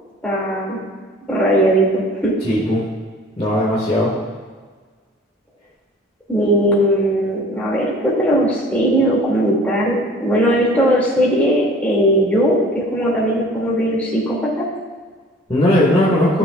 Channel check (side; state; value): both; normal; correlation 0.48